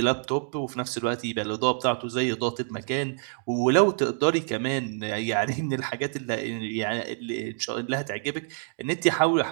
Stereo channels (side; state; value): left; silent; digital silence